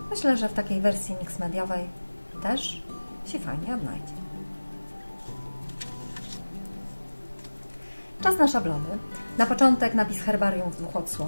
Myślę, że w takiej wersji mix mediowej też się fajnie odnajdzie. Czas na szablony. Na początek napis herbarium w 2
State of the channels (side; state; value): both; inverted; correlation -1.00